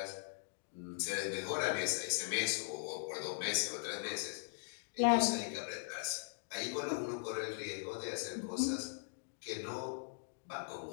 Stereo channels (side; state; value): right; silent; digital silence